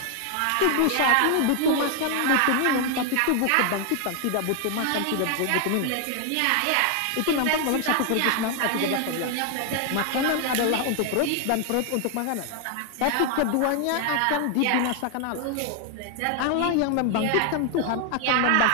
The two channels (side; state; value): both; different; correlation 0.00